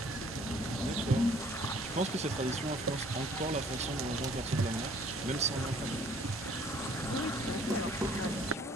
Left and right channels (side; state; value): both; normal; correlation 0.57